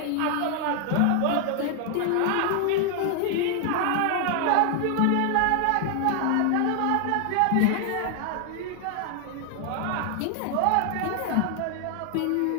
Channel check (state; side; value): different; both; correlation 0.00